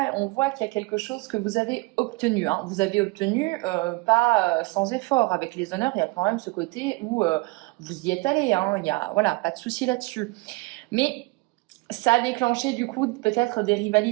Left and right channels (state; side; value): quieter; left; 24.4 dB